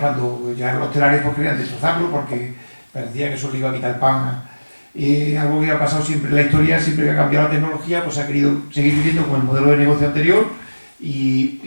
llegaron los telares pues querían destrozarlo porque parecía que eso le iba a quitar el pan. Algo que ha pasado siempre en la historia, siempre que ha cambiado la tecnología, pues se ha querido seguir viviendo con el modelo de negocio anterior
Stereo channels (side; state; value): both; inverted; correlation -1.00